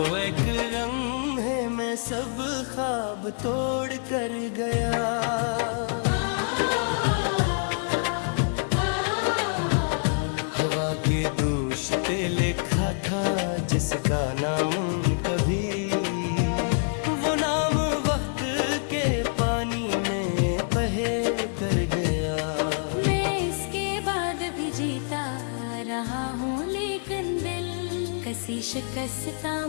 एक लम्हे में सब ख्वाब तोड़ कर गया। हवा के दोष पे लिखा था जिसका नाम कभी, वो नाम वक्त के पानी में बहे कर गया। मैं इसके बाद भी जीता रहा हूँ, लेकिन दिल कसी शिकस्ता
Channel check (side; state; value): right; silent; 61 dB below the other